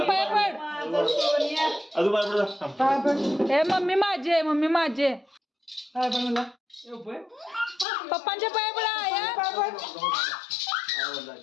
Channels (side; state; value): right; drops out; at 7.9 s